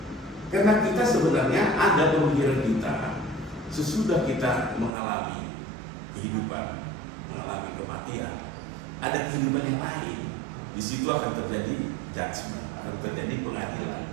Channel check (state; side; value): drops out; left; at 4.9 s